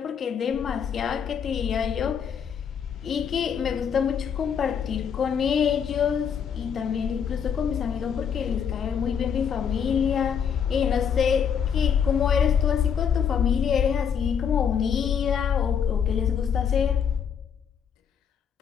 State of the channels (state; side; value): quieter; right; 7.5 dB